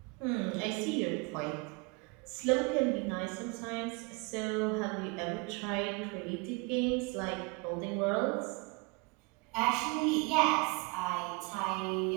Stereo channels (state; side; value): quieter; left; 29.0 dB